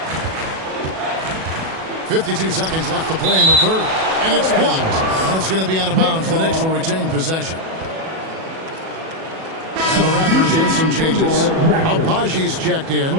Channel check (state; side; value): late; left; 37 ms